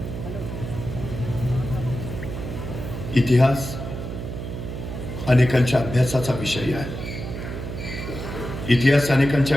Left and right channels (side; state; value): right; noise; hum, 7 dB below the sound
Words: इतिहास अनेकांच्या अभ्यासाचा विषय आहे. इतिहास अनेकांच्या